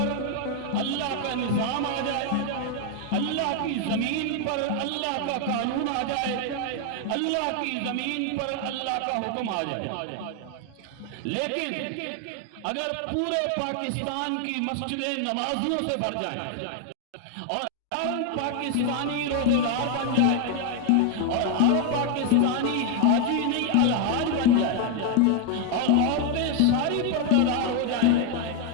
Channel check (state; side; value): different; both; correlation 0.00